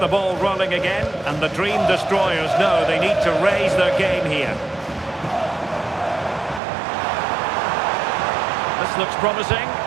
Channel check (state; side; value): drops out; left; at 6.6 s